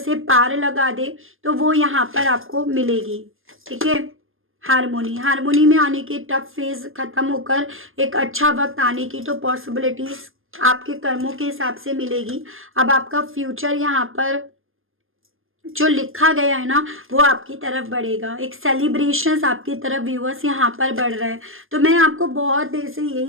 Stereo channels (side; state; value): left; late; 0.60 ms